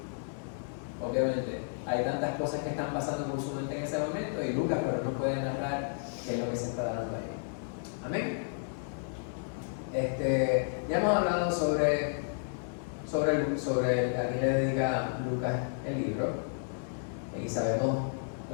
Obviamente, hay tantas cosas que están pasando por su mente en ese momento y Lucas pero no puede narrar qué es lo que se está dando ahí. Amén. Ya hemos hablado sobre a quién le dedica Lucas el libro y sabemos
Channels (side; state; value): right; silent; digital silence